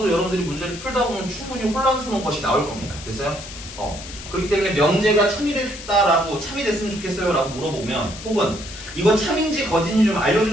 여러분들이 문제를 풀다 보면 충분히 혼란스러운 것이 나올 겁니다. 됐어요? 그렇기 때문에 명제가 참이 됐다라고 참이 됐으면 좋겠어요 라고 물어보면 혹은 이거 참인지 거짓인지 좀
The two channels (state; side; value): noise; left; hiss, 13 dB below the sound